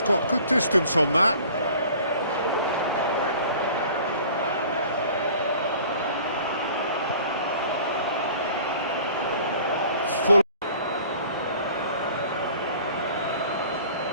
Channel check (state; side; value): inverted; both; correlation -0.48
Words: got good distance on that. Full.